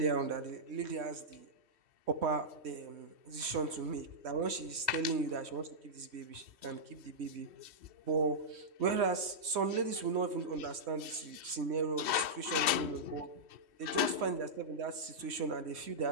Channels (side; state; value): left; late; 3.1 ms